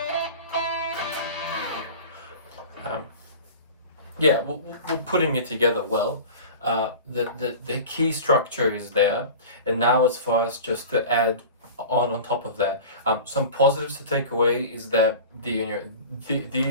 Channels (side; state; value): both; inverted; correlation -0.37